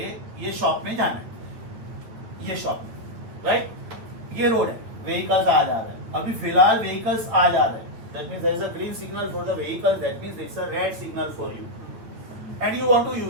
ये शॉप में जाना है, ये शॉप में, राइट? ये रोड है, व्हीकल्स आ जा रहे हैं, अभी फिलहाल व्हीकल्स आ जा रहे हैं. That means there is a green signal for the vehicle. That means it's a red signal for you. And you want to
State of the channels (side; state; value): left; late; 8.8 ms